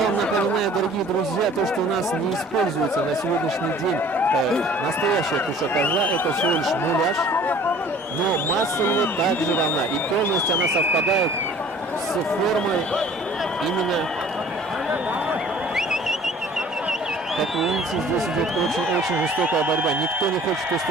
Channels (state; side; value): normal; both; correlation 0.50